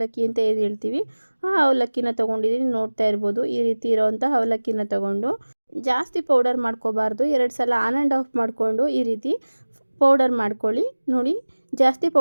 ಅಂತ ಏನು ಹೇಳ್ತೀವಿ ಆ ಅವಲಕ್ಕಿನ ತೊಗೊಂಡಿದ್ದೀನಿ. ನೋಡ್ತಾ ಇರ್ಬೋದು, ಈ ರೀತಿ ಇರೋವಂಥ ಅವಲಕ್ಕಿನ ತೊಗೊಂಡು ಜಾಸ್ತಿ ಪೌಡರ್ ಮಾಡ್ಕೋಬಾರ್ದು. 2 ಸಲ ಆನ್ ಆ್ಯಂಡ್ ಆಫ್ ಮಾಡಿಕೊಂಡು ಈ ರೀತಿ ಪೌಡರ್ ಮಾಡ್ಕೊಳ್ಳಿ. ನೋಡಿ, ಜಾಸ್ತಿ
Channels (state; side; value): inverted; both; correlation -1.00